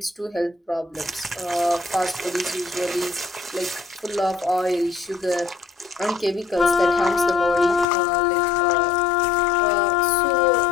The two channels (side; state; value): right; drops out; at 7.9 s